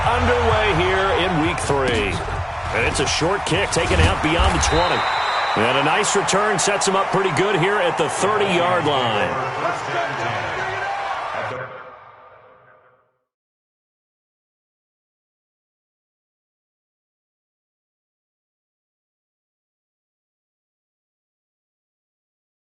underway here in Week 3. And it's a short kick taken out beyond the 20. And a nice return sets him up pretty good here at the 30-yard line.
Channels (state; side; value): identical; both; correlation 1.00